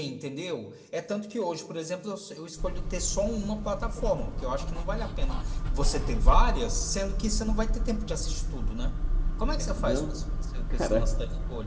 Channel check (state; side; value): identical; both; correlation 1.00